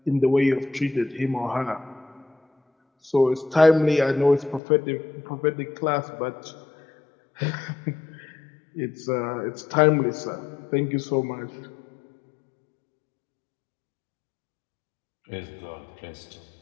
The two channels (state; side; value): drops out; right; at 4.6 s